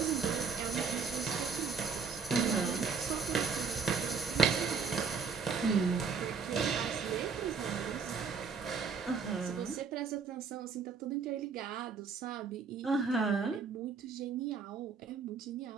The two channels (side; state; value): left; quieter; 5.5 dB